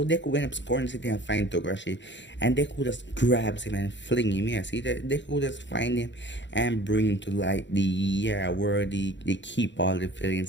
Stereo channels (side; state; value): right; late; 0.53 ms